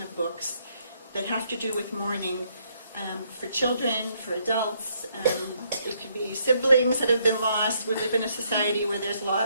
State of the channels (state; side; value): inverted; both; correlation -0.72